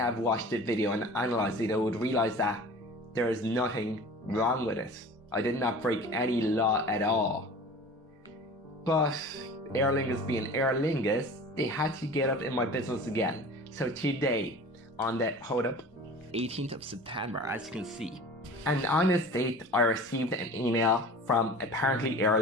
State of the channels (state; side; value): normal; both; correlation 0.40